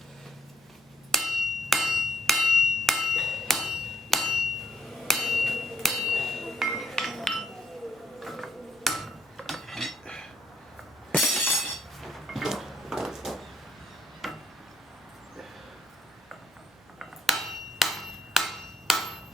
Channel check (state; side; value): normal; both; correlation 0.72